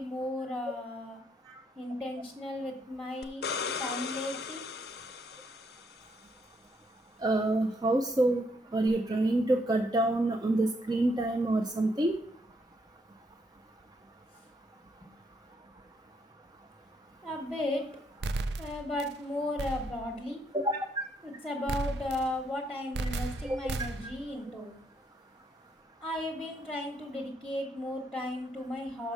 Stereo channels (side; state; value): both; normal; correlation 0.74